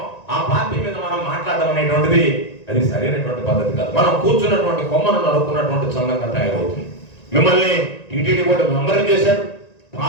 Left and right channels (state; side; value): late; right; 1.9 ms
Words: ఆ పార్టీ మీద మనం మాట్లాడడం అనేటువంటిది అది సరైనటువంటి పద్ధతి కాదు. మనం కూర్చున్నటువంటి కొమ్మను నడుపుకున్నటువంటి సంఘంగా తయారవుతుంది. మిమ్మల్ని టీటీడీ బోర్డు మెంబర్ చేశాడు,